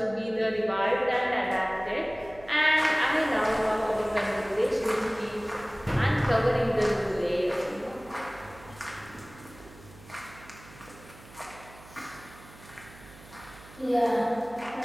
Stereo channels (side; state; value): right; noise; hum, 21 dB below the sound